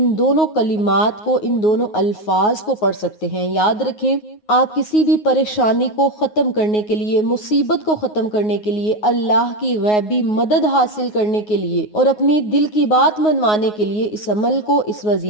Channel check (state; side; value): late; right; 9.5 ms